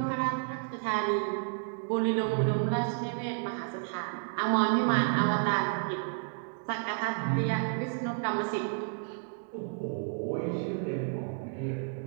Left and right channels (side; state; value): left; silent; 57 dB below the other